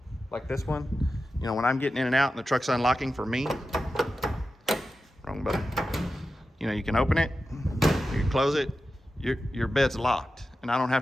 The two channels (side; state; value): both; normal; correlation 0.92